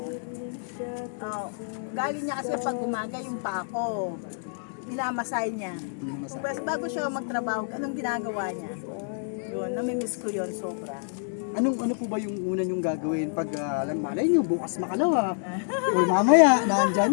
Galing niya kasi pag umaga yung pa ako. Minamasay niya. Bago siya magtrabaho, anong ginagawa niya? Yun, namimiss ko yun sobra. Ano po ba yung una niyong gagawin pag malay niyo bukas makalawa or mamaya nandyan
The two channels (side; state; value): right; silent; digital silence